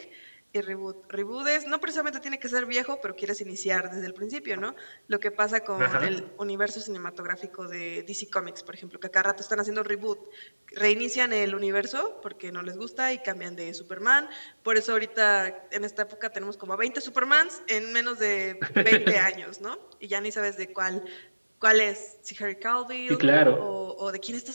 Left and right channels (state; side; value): inverted; both; correlation -1.00